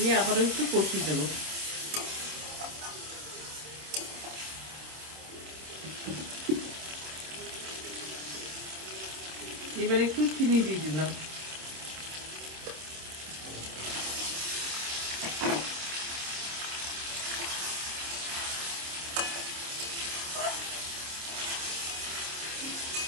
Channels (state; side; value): late; left; 26 ms